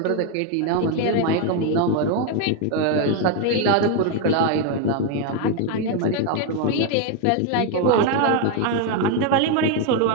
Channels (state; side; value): different; both; correlation 0.01